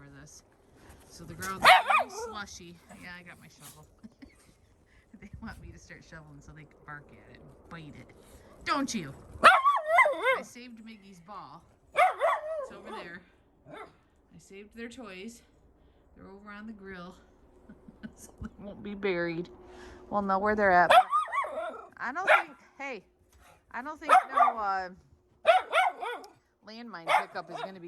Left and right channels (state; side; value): identical; both; correlation 1.00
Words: this. So the ground's very slushy. Yeah, I got my shovel. They want me to start shoveling so they can bark at it and bite it. Don't you? I saved Miggy's ball. It's over there. I saved their toys. They're over on the grill. So they won't be buried. We'll know where they're at. I don't think, hey, I don't think no landmine pickup is going to be